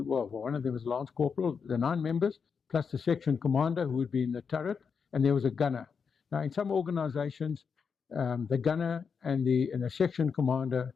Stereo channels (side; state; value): right; quieter; 6.0 dB